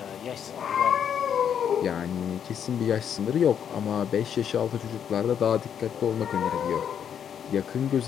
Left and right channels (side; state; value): right; quieter; 8.5 dB